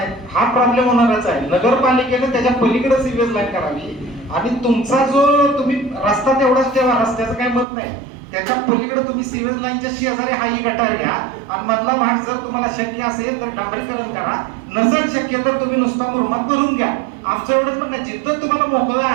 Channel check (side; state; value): left; drops out; at 7.7 s